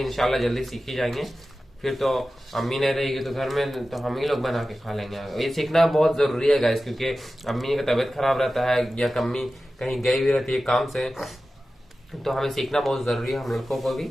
इंशाल्लाह जल्दी सीख ही जाएंगे। फिर तो अम्मी नहीं रहेगी तो घर में, तो हम ही लोग बना के खा लेंगे। ये सीखना बहुत जरूरी है गाइस, क्योंकि अम्मी का तबीयत खराब रहता है या अम्मी कहीं गई हुई रहती है काम से, तो हमें सीखना बहुत जरूरी है हम लड़कों को भी।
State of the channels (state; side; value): normal; both; correlation 0.94